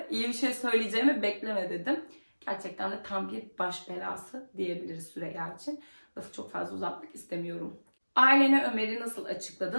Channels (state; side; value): inverted; both; correlation -1.00